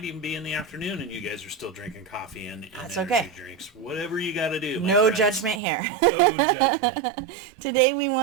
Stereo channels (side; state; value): left; drops out; at 5.6 s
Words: even be in the afternoon and you guys are still drinking coffee and That's energy okay. drinks. Whatever you got to do. No judgment here. No judgment. Today we